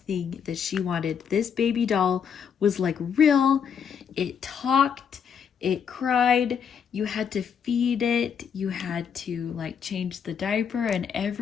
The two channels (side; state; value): right; quieter; 7.3 dB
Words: thing that she wanted. This baby doll was like real. It talked, it cried, you had to feed it, you had to like change the diaper and